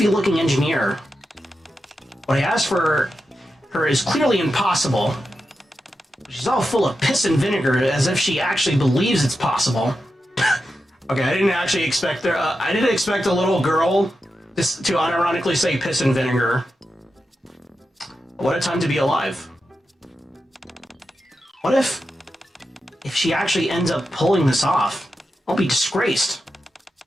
engineer. What I asked for her is clearly impossible. She's all full of piss and vinegar, as if she actually believes it's possible. Okay, I didn't actually expect there. I didn't expect a little girl just to unironically say piss and vinegar. What a time to be alive. What if she actually ends up pulling this off? I'll be disgraced.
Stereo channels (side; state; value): both; normal; correlation 0.89